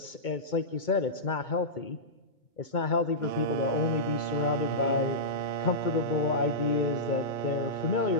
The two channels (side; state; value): right; late; 2.2 ms